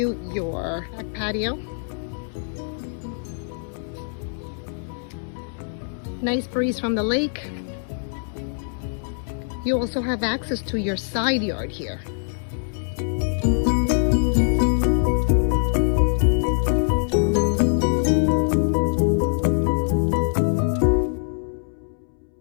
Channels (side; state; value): right; silent; 63 dB below the other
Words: your back patio. Nice breeze from the lake. You also have access to your side yard here.